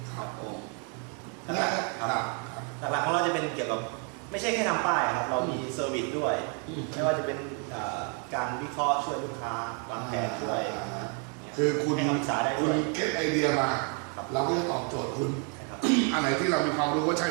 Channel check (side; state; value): left; quieter; 37.6 dB